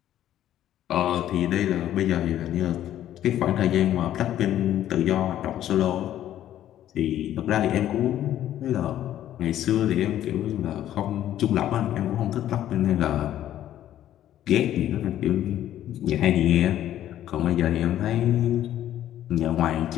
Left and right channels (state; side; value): quieter; right; 12.0 dB